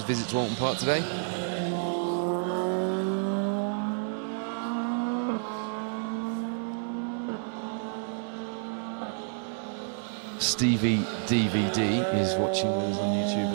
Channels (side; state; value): left; silent; 58 dB below the other